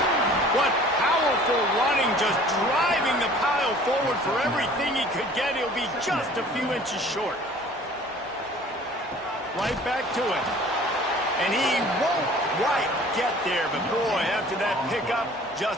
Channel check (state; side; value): normal; both; correlation 0.49